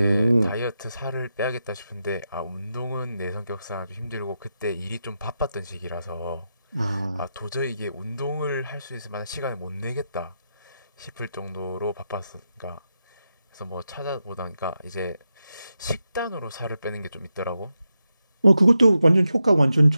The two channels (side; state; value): both; inverted; correlation -0.88